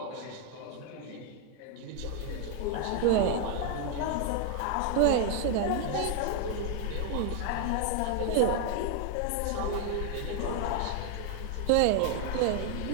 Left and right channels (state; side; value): different; both; correlation 0.00